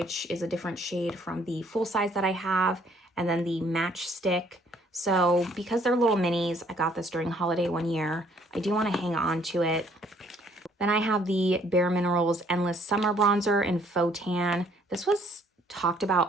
is a different shade from the full size that I have, and then the match stick. So because they're little minis, I got this during holiday one year. I do want to hang on to it. Then I have the Bare Minerals Endless Summer Bronzer in Faux Tan. This was talked about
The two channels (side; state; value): both; normal; correlation 0.63